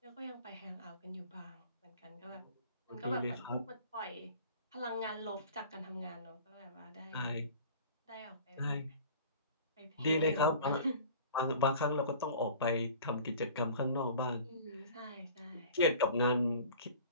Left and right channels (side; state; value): both; inverted; correlation -0.45